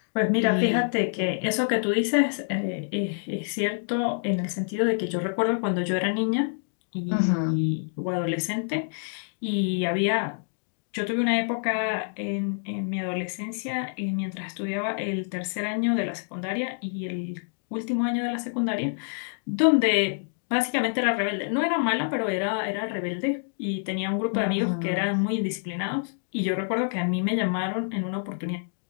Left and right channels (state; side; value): silent; right; digital silence